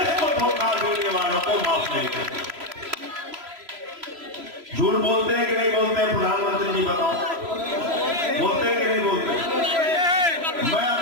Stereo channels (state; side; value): late; left; 3.0 ms